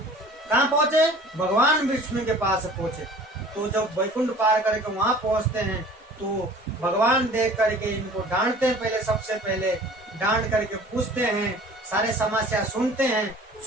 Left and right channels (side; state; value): both; normal; correlation 0.46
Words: कहाँ पहुंचे, भगवान विष्णु के पास पहुंचे। तो जब वैकुंठ पार करके वहां पहुंचते हैं, तो भगवान देख करके इनको डांटते हैं, पहले सबसे पहले डांट करके पूछते हैं, सारे समस्या सुनते हैं,